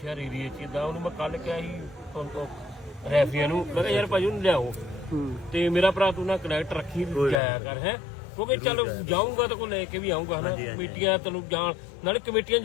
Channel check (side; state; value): right; drops out; at 7.4 s